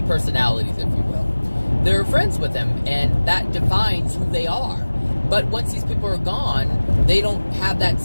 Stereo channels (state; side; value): inverted; both; correlation -1.00